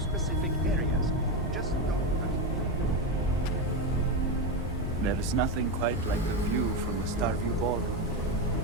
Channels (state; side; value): normal; both; correlation 0.12